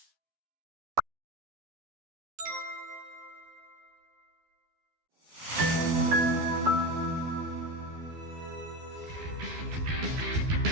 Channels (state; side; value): late; left; 12 ms